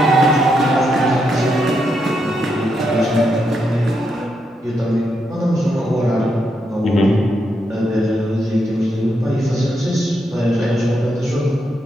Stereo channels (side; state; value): both; normal; correlation 0.81